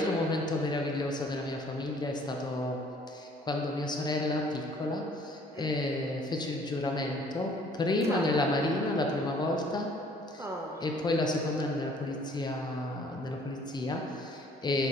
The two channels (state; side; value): normal; both; correlation 0.58